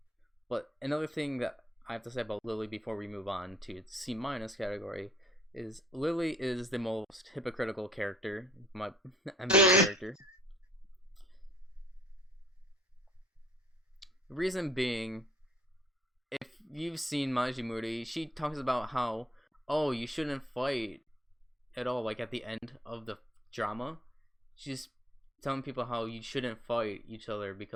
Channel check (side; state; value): both; normal; correlation 0.58